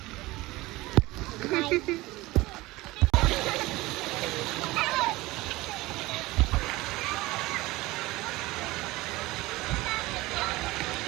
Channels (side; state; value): left; quieter; 20.1 dB